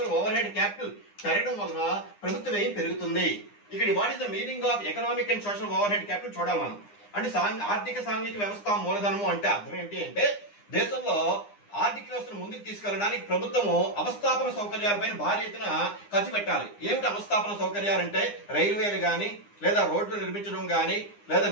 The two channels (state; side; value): late; right; 9.8 ms